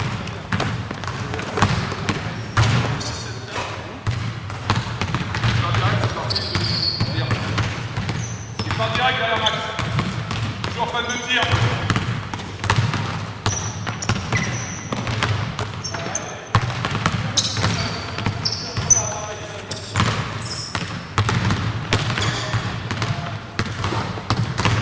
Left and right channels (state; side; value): identical; both; correlation 1.00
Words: Pas direct derrière Max. Toujours fan de tir.